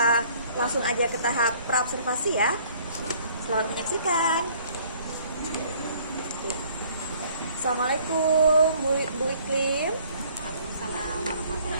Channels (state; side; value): inverted; both; correlation -0.58